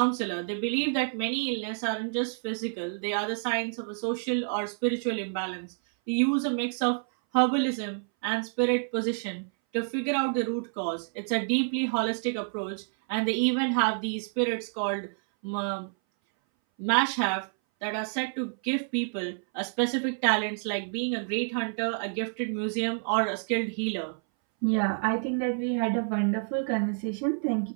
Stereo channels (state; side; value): silent; left; 59 dB below the other